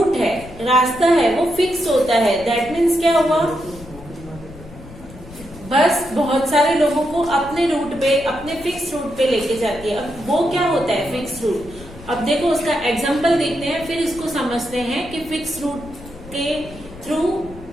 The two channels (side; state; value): left; noise; rumble, 18 dB below the sound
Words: है, रास्ता है, वो फिक्स होता है। दैट मीन्स क्या हुआ? बस बहुत सारे लोगों को अपने रूट पे, अपने फिक्स रूट पे लेके जाती है। अब वो क्या होता है फिक्स रूट? अब देखो उसका एग्जांपल देखते हैं, फिर इसको समझते हैं कि फिक्स रूट के थ्रू